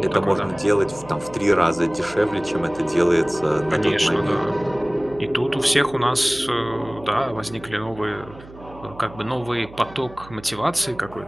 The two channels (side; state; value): right; noise; hum, 19 dB below the sound